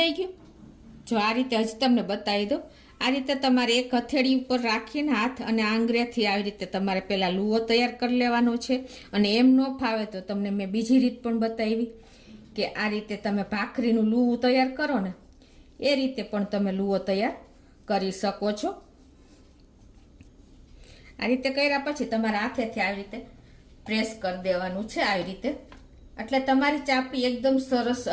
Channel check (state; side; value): identical; both; correlation 1.00